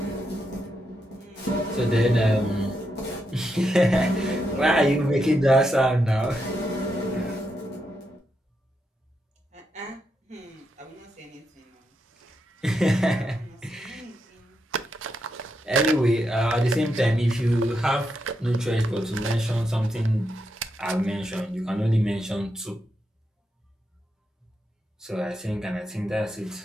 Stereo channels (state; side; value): normal; both; correlation 0.83